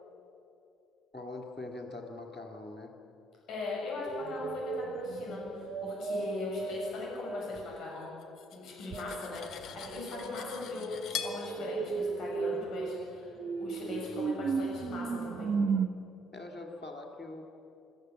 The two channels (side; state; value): both; normal; correlation 0.69